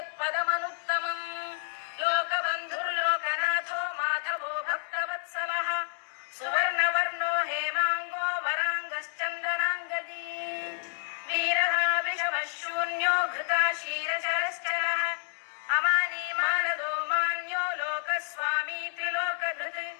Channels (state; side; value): silent; right; digital silence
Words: लोकबन्धुर्लोकनाथो माधवो भक्तवत्सलः सुवर्णवर्णो हेमाङ्गो वराङ्गश्चन्दनाङ्गदी वीरः विषमः शून्यो घृता क्षीरचरश्चरः अमानी मानदो मान्यो लोकस्वामी त्रिलोकधृत्